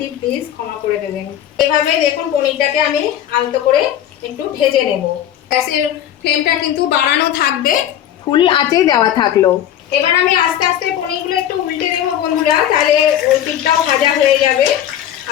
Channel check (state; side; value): quieter; right; 10.9 dB